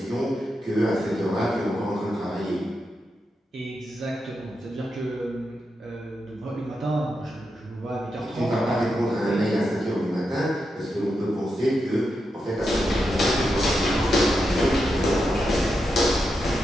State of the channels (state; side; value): normal; both; correlation 0.86